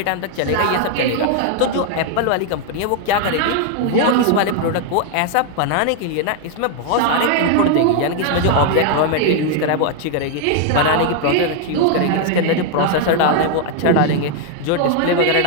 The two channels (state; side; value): different; both; correlation 0.00